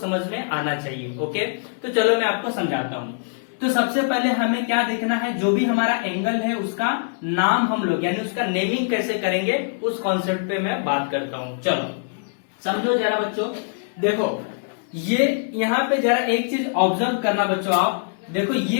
में आना चाहिए। ओके, तो चलो मैं आपको समझाता हूं। तो सबसे पहले हमें क्या देखना है, जो भी हमारा एंगल है उसका नाम हम लोग यानी उसका नेमिंग कैसे करेंगे, उस कॉन्सेप्ट पे मैं बात करता हूं। चलो समझो जरा बच्चों। देखो, ये यहाँ पे जरा एक चीज ऑब्जर्व करना बच्चों, आप देखो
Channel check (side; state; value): right; silent; 63 dB below the other